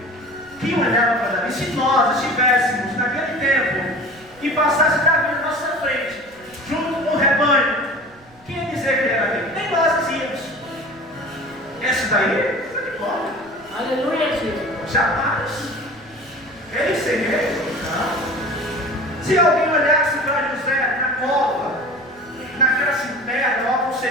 quem olhava para Davi? Se nós estivéssemos naquele tempo e passasse Davi na nossa frente, junto com o rebanho, quem ia dizer que era Davi? Nem nós dizíamos. Esse daí, está de bola. Aleluia, Jesus. Jamais. Ele seria. Se alguém olhasse para José na cova, naquela cisterna, ou algo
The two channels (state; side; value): noise; right; rumble, 28 dB below the sound